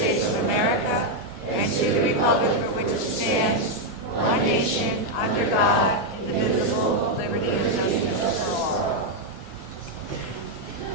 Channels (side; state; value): both; normal; correlation 0.00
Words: of America and to the republic for which it stands, one nation, under God, indivisible, with liberty and justice for all.